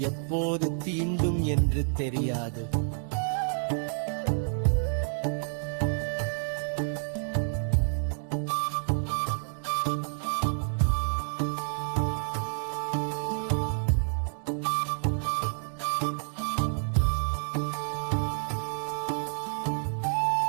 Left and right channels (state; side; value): silent; left; digital silence